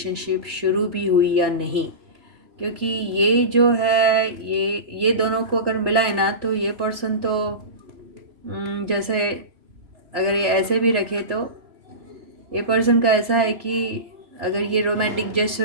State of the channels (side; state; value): left; late; 3.0 ms